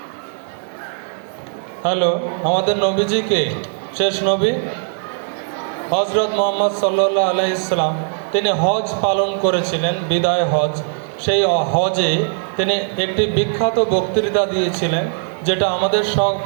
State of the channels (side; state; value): left; silent; digital silence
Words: আমাদের নবীজিকে শেষ নবী হজরত মুহাম্মদ সাল্লাল্লাহু আলাইহি সাল্লাম তিনি হজ পালন করেছিলেন, বিদায় হজ। সেই হজে তিনি একটি বিখ্যাত বক্তৃতা দিয়েছিলেন, যেটা আমাদের